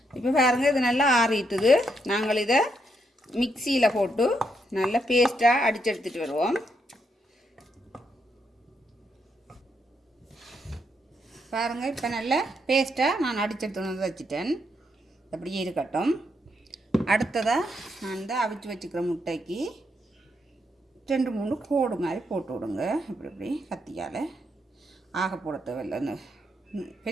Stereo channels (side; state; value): both; normal; correlation 0.78